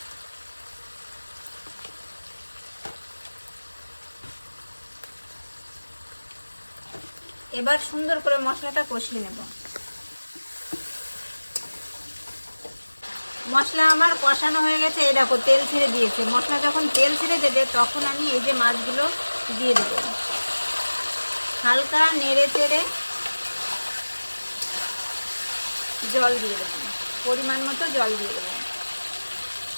এবার সুন্দর করে মশলাটা কষিয়ে নেব। মশলা আমার কষানো হয়ে গেছে, এই দেখো তেল ছেড়ে দিয়েছে। মশলা যখন তেল ছেড়ে দেবে তখন আমি এই যে মাছগুলো দিয়ে দেবো। হালকা নেড়ে চেড়ে জল দিয়ে দেবো, পরিমাণ মতো জল দিয়ে দেবো।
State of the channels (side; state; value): both; inverted; correlation -1.00